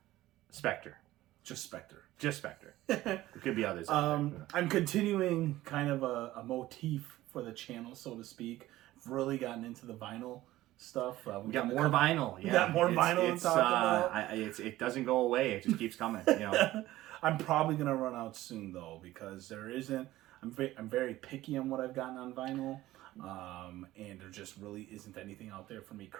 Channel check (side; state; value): left; quieter; 16.0 dB